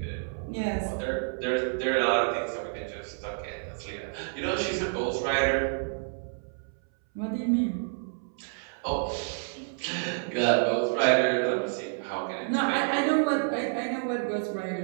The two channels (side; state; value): left; silent; 59 dB below the other